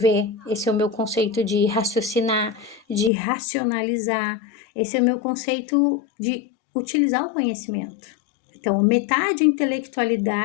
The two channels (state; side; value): drops out; right; at 3.1 s